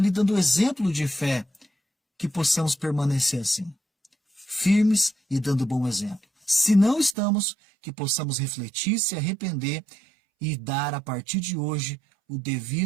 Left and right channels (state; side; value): drops out; left; at 7.2 s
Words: dando o exemplo de fé. Que possamos permanecer assim, firmes e dando bom exemplo. Se não estamos, que possamos refletir, se arrepender e dar a partir de hoje o